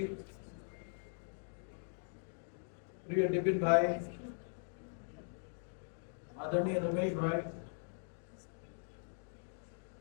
प्रिय डिपिन भाई, आदरणीय रमेश भाई,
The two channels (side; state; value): right; silent; digital silence